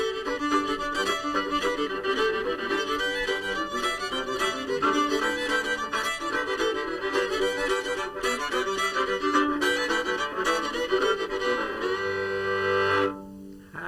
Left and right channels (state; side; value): identical; both; correlation 1.00